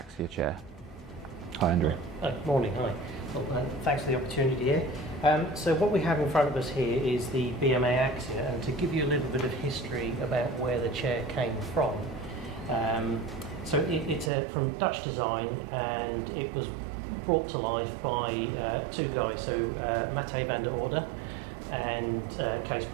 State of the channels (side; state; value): left; drops out; at 14.3 s